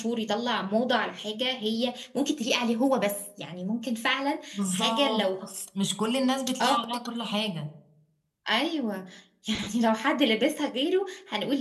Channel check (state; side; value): identical; both; correlation 1.00